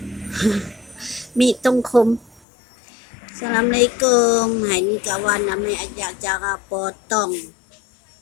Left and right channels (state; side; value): drops out; right; at 2.4 s